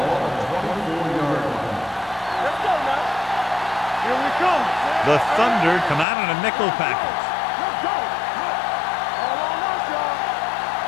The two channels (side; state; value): right; drops out; at 6.1 s